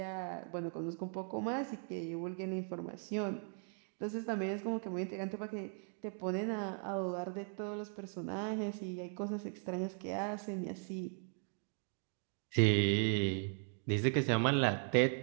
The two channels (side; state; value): left; silent; 52 dB below the other